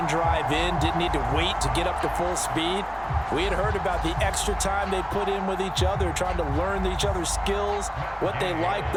drive in, didn't need to wait to get up to full speed. We had heard about the extra time they put in with each other, trying to learn each other's skills, what they liked,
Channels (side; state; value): both; identical; correlation 1.00